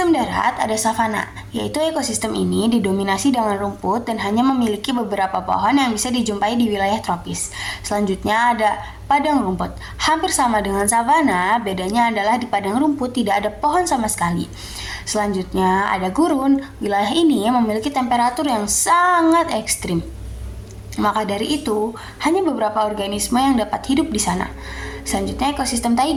darat ada savana, yaitu ekosistem ini didominasi dengan rumput dan hanya memiliki beberapa pohon yang bisa dijumpai di wilayah tropis. Selanjutnya ada padang rumput. Hampir sama dengan savana, bedanya adalah di padang rumput tidak ada pohon sama sekali. Selanjutnya ada gurun. Wilayah ini memiliki temperatur yang sangat ekstrim. Maka dari itu, hanya beberapa organisme yang dapat hidup di sana. Selanjutnya ekosistem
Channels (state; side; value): identical; both; correlation 1.00